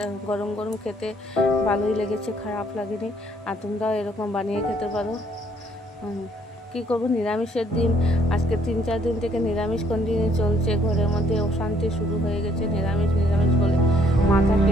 গরম গরম খেতে ভালোই লেগেছে, খারাপ লাগেনি। আর তোমরাও এরকম বানিয়ে খেতে পারো। কী করবো, নিরামিষের দিন আজকে 3-4 দিন থেকে নিরামিষ কন্টিনিউ চলছে। ঘরের মধ্যে অশান্তি শুরু হয়ে গেছে, নিরামিষ বলে মাথা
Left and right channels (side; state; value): both; normal; correlation 0.65